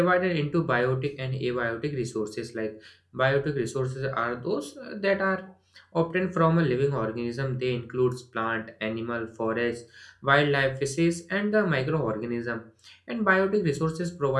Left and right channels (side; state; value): both; identical; correlation 1.00